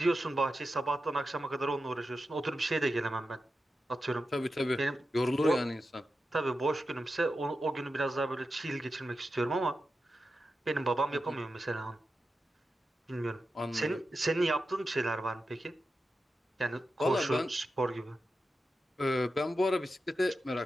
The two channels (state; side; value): normal; both; correlation 0.90